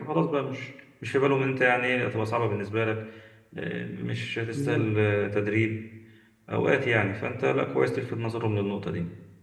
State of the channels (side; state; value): both; identical; correlation 1.00